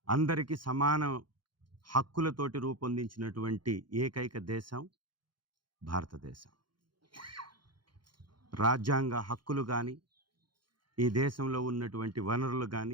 అందరికీ సమాన హక్కులతోటి రూపొందించినటువంటి ఏకైక దేశం భారతదేశం. రాజ్యాంగ హక్కులు కానీ, ఈ దేశంలో ఉన్నటువంటి వనరులు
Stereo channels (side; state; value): left; late; 0.72 ms